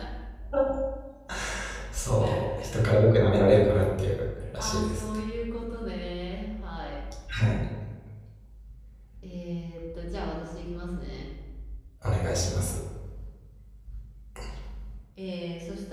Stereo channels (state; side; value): identical; both; correlation 1.00